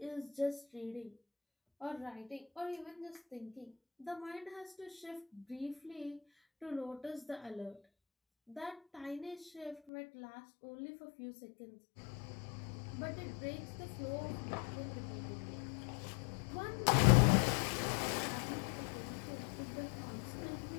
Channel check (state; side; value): drops out; right; at 9.8 s